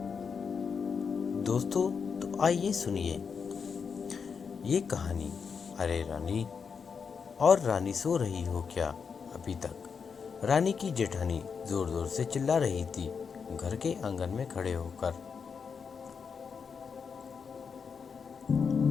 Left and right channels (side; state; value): right; quieter; 6.0 dB